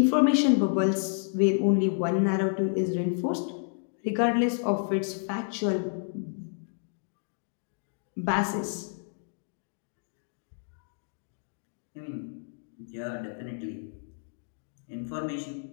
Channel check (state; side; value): silent; right; digital silence